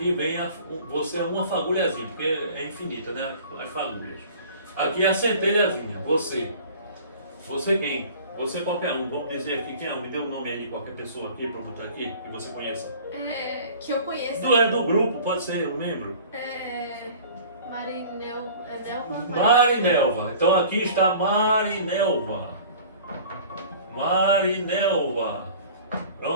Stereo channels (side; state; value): both; inverted; correlation -0.45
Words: vem você é uma fagulhazinha, porque é infinita, né, as fagulhas. Aqui é a centelhazinha, você quem? Você qualquer um, vamos dizer aqui quem é, me dê um nome aí de qualquer pessoa aqui para eu botar aqui, que você conheça. Que eu conheço. Do grupo, pode ser um membro. Marinelva. Marinelva. Então aqui está Marinelva.